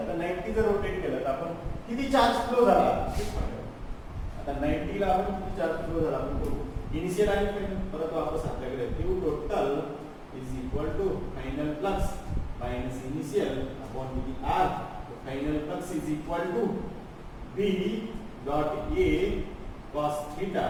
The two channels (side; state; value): both; identical; correlation 1.00